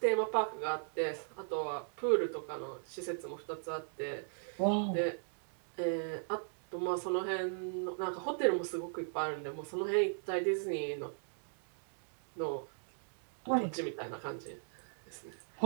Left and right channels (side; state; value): left; silent; digital silence